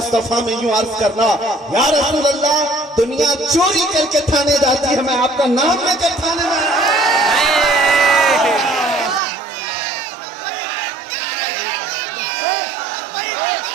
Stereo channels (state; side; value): drops out; left; at 9.2 s